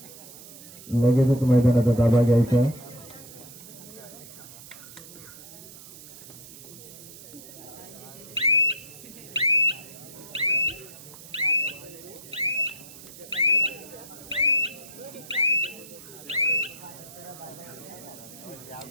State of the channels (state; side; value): noise; right; hiss, 17 dB below the sound